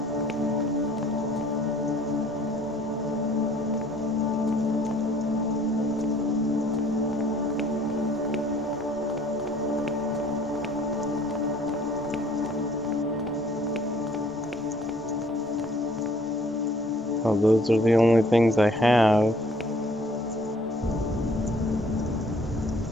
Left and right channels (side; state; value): both; normal; correlation 0.58